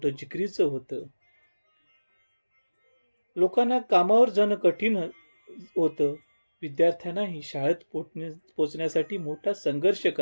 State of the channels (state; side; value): inverted; both; correlation -1.00